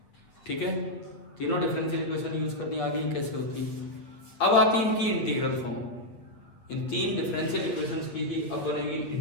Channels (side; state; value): right; late; 8.4 ms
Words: ठीक है, तीनों डिफरेंशियल इक्वेशन यूज करनी आ गई, कैसे होती है। अब आती है इनकी इंटीग्रल फॉर्म। इन 3 डिफरेंशियल इक्वेशंस की ही अब बनेगी